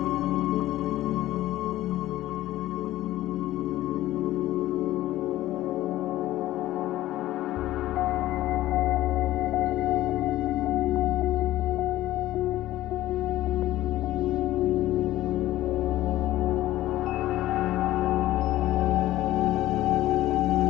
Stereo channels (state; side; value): quieter; right; 15.3 dB